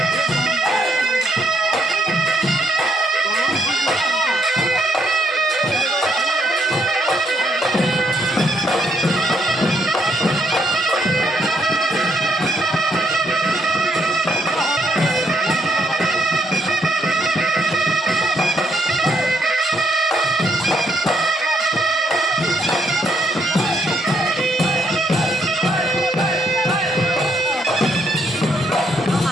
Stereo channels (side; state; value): both; normal; correlation 0.73